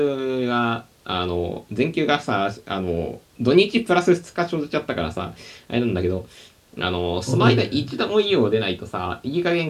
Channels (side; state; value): both; identical; correlation 1.00